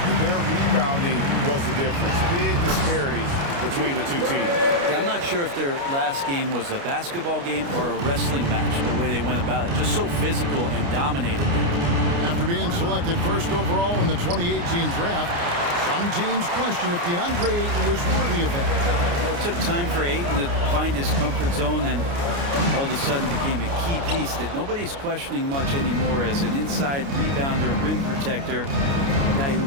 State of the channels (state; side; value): late; left; 29 ms